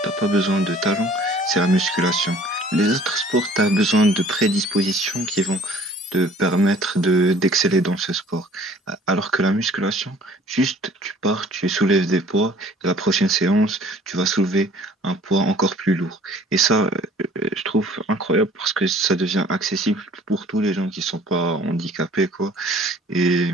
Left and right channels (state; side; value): normal; both; correlation 0.53